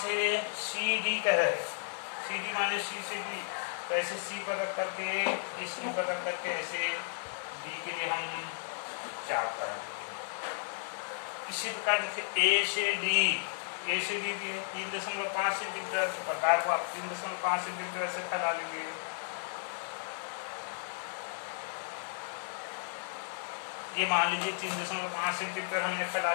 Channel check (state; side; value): silent; right; digital silence